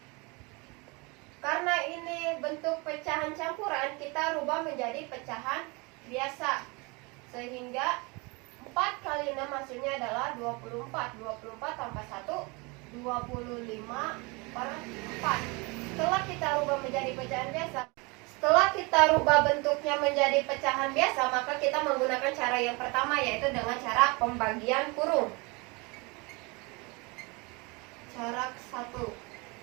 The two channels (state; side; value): quieter; left; 27.9 dB